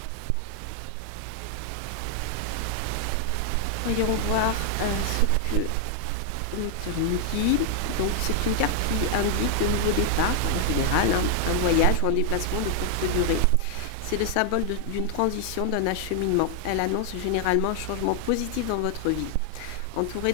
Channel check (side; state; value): both; different; correlation 0.00